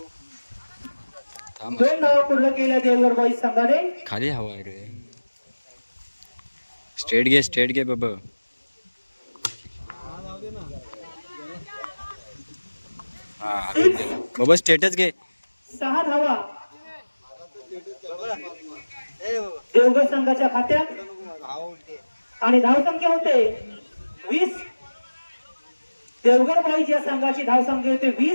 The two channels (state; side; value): inverted; both; correlation -1.00